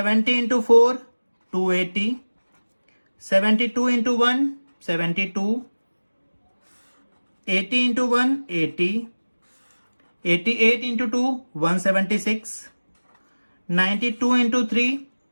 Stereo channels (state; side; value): inverted; both; correlation -1.00